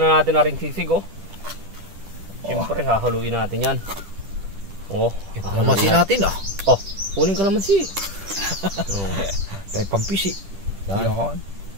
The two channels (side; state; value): left; late; 10 ms